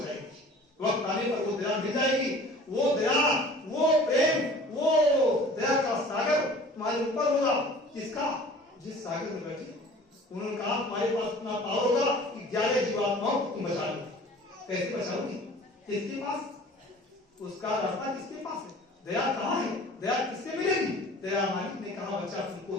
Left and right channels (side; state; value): both; normal; correlation 0.46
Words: वक्त आने पर वो दया मिल जाएगी, वो दया, वो प्रेम, वो दया का सागर तुम्हारे ऊपर होगा। किसका? जिस सागर में बैठे। उन्होंने कहा तुम्हारे पास इतना पावर होगा कि 11 जीवात्माओं को तुम बचा लो। कैसे बचाओगी? किसके पास? उसका रास्ता किसके पास है? दया कहाँ है? दया किससे मिलेगी? दया मालिक ने कहा बच्चा